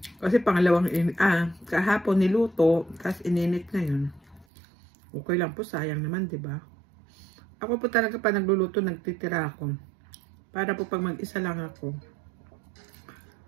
Kasi pangalawang kahapon niluto, tapos ininit na yun. Okay lang po, sayang naman, di ba? Ako po talaga pa nagluluto, nagtitira ako. Para po pag mag-isa lang ako,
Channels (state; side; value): drops out; left; at 4.5 s